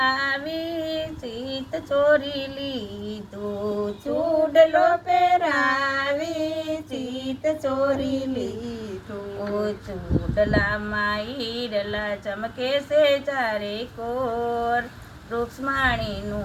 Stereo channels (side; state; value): both; identical; correlation 1.00